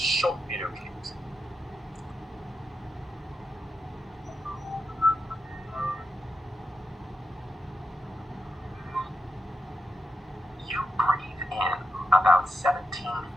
video clip. You breathe in about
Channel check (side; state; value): both; normal; correlation 0.86